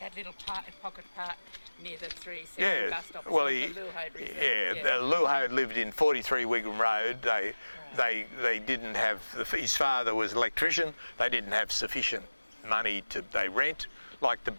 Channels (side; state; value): both; inverted; correlation -1.00